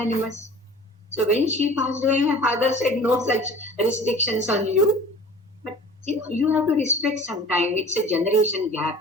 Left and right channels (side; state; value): both; normal; correlation 0.44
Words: So when she passed away, my father said, no such restrictions on you. But you have to respect sometime. It's a generation